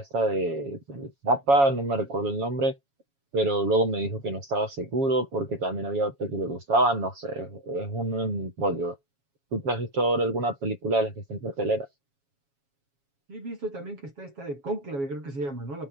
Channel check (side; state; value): left; late; 7.2 ms